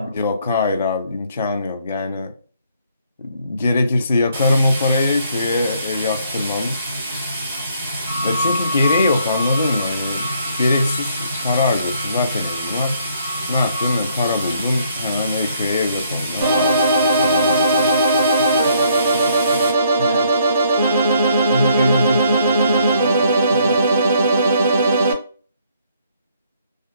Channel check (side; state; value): both; inverted; correlation -0.67